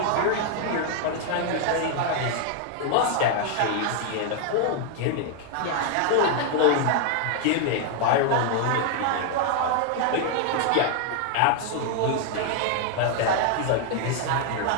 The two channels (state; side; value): different; both; correlation 0.00